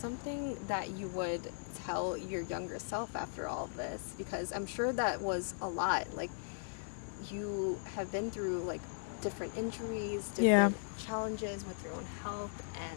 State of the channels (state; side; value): silent; right; digital silence